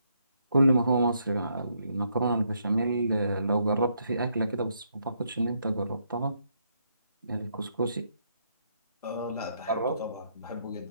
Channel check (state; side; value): inverted; both; correlation -0.75